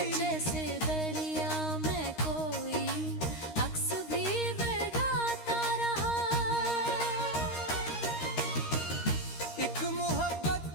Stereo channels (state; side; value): late; right; 13 ms